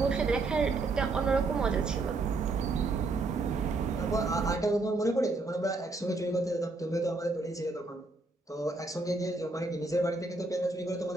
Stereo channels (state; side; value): quieter; left; 3.3 dB